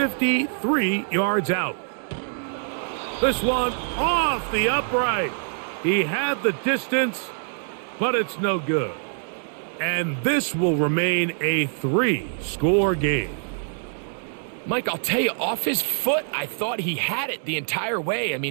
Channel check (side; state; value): left; silent; digital silence